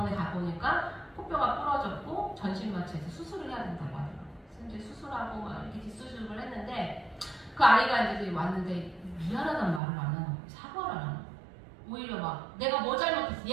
가보니까 코뼈가 부러졌고 전신마취해서 수술을 해야 된다고 하더라고요. 그래서 이제 수술하고 막 이렇게 뒷수술을 했는데 그 아이가 이제 왔는데 미안하다는 말을 안 하는 거예요. 사과를 안 하는 거예요. 오히려 막 내가 뭐 잘못했어,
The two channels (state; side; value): drops out; left; at 9.8 s